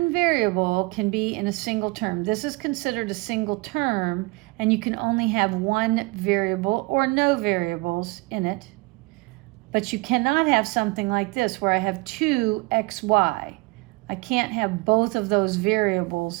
variable can be in a single term. This is considered a single term, and you can only have one variable or no variables in it. But you cannot have something like this where I have 2xy. I can't have both of those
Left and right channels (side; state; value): left; quieter; 25.6 dB